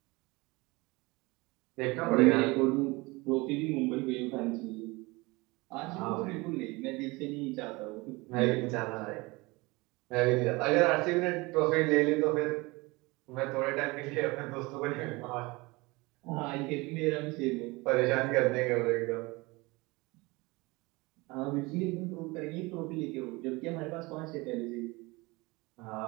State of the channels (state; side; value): quieter; left; 23.9 dB